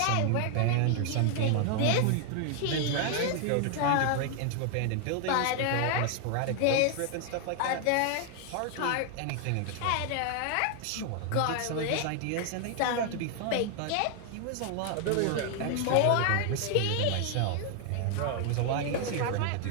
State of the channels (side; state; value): both; different; correlation 0.00